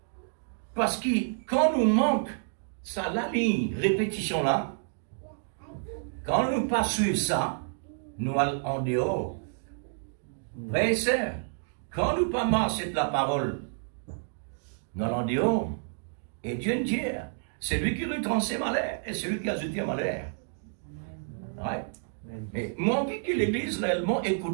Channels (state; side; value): silent; left; digital silence